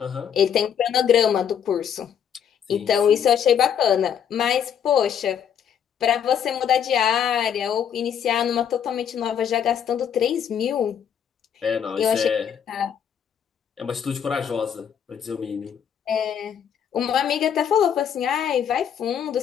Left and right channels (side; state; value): right; quieter; 8.4 dB